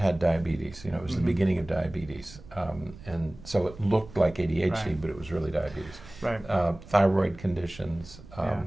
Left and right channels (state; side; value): noise; right; rumble, 18 dB below the sound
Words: diabetes. It was the beginning of diabetes, and so it looked like ADHD, but it was really diabetes. Thyroid conditions.